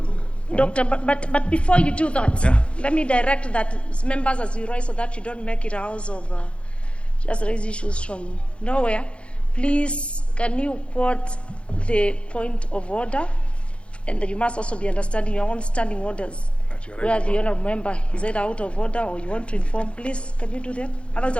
Doctor, but before you do that, let me direct that members as you rise so that you don't make it a house of just raise issues from nowhere. Please, can you quote the point of order? And you must also be understanding your own standing orders. Where the honourable member is either out of order or you want to inform, please, can you do that? Otherwise,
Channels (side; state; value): right; late; 0.059 ms